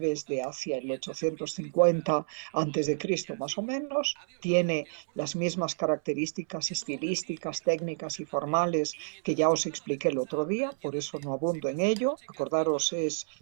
es de hacia el 850 a.C. más o menos, tiene las mismas características estilísticas, técnicas y formales que ya os expliqué el otro día, por eso no abundo en ello. Acordaros, es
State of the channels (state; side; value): silent; left; 58 dB below the other